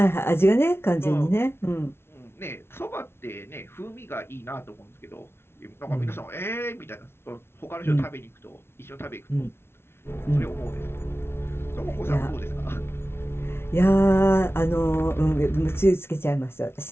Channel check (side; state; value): right; late; 0.12 ms